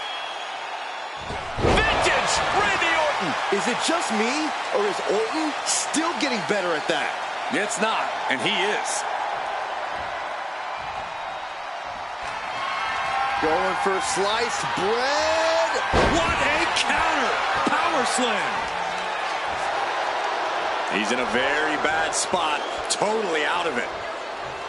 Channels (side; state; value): both; identical; correlation 1.00